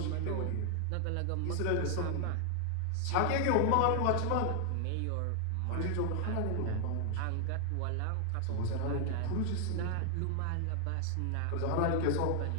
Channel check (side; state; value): both; different; correlation 0.00